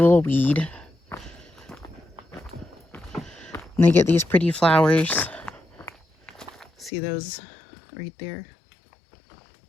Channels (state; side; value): drops out; right; at 6.9 s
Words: weed. And they get these pretty flowers. See those right there?